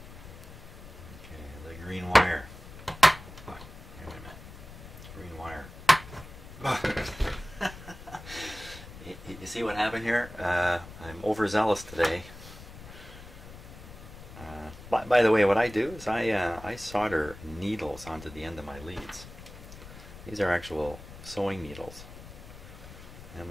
Okay, the green wire. Oh, wait a minute. Green wire. You see what happened here? I'm overzealous today. By the way, what I do is I solder needles onto the end of my leads. These are actual sewing needles,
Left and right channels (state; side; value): noise; left; rumble, 15 dB below the sound